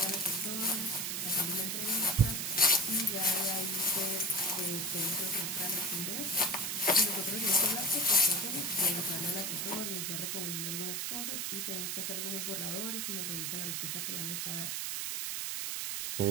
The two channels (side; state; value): right; noise; hiss, 1 dB below the sound